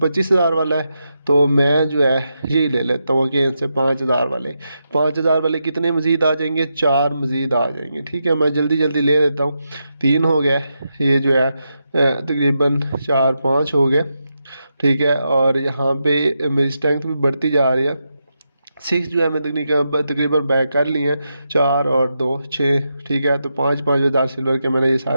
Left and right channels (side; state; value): both; inverted; correlation -0.86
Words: वाला है। तो मैं जो है यही ले लेता हूँ अगेन से 5,000 वाले। 5,000 वाले कितने मज़ीद आ जाएंगे, 4 मज़ीद आ जाएंगे, ठीक है। मैं जल्दी जल्दी ले लेता हूँ, 3 हो गए। ये जो है तकरीबन 4-5 हो गए, ठीक है। और यहाँ पे मेरी स्ट्रेंथ भी बढ़ती जा रही है। 6 जो है मैं तकरीबन बैक कर लिए हैं, 4 और 2 6, ठीक है। तो 5,000 सिल्वर के मैंने ये